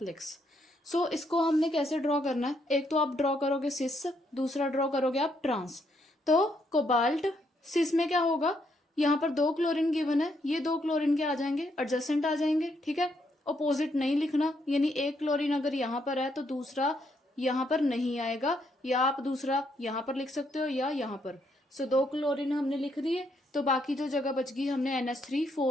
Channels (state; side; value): normal; both; correlation 0.75